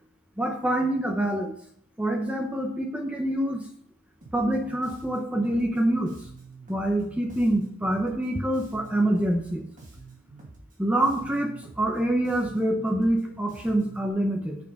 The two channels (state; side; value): normal; both; correlation 0.84